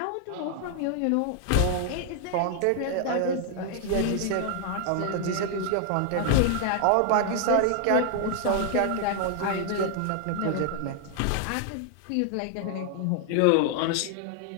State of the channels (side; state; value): both; different; correlation 0.00